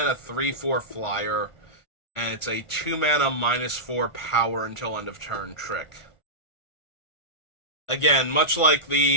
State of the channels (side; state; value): right; late; 1.4 ms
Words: 3/4 flyer, and it's a 2-mana -4 power until end of turn trick. Again, much like